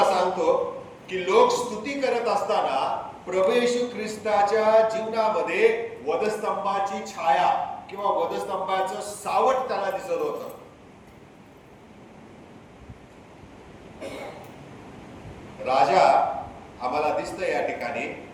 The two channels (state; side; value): identical; both; correlation 1.00